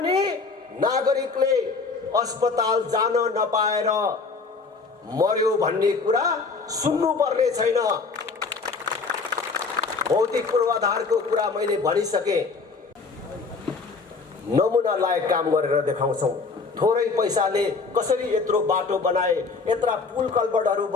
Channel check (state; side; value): quieter; right; 4.4 dB